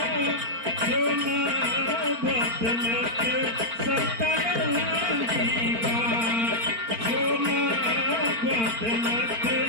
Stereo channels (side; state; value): left; late; 4.4 ms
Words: जो ना बदलत सतरंगी बा जो ना बदलत